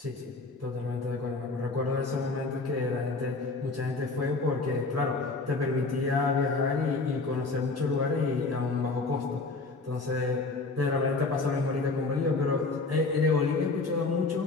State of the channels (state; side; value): quieter; right; 3.7 dB